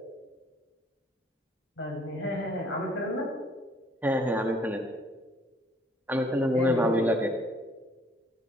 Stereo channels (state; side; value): normal; both; correlation 0.60